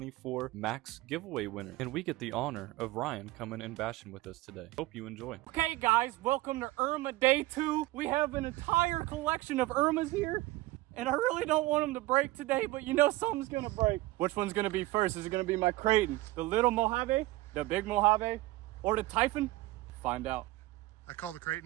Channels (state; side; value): quieter; left; 18.9 dB